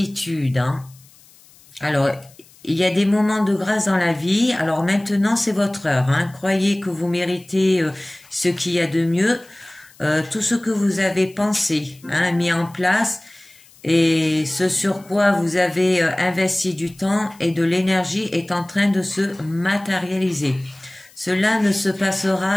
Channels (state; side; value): noise; left; hiss, 26 dB below the sound